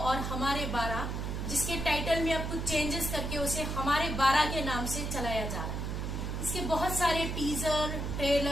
और हमारे 12, जिसके टाइटल में अब कुछ चेंजेस करके उसे हमारे 12 के नाम से चलाया जा रहा है। इसके बहुत सारे टीजर,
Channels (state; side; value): noise; right; hum, 3 dB below the sound